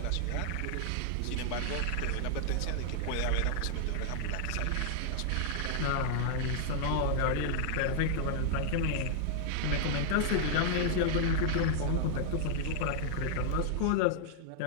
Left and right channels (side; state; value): both; different; correlation -0.01